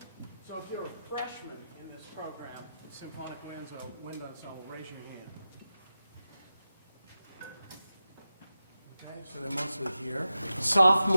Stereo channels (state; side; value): inverted; both; correlation -0.92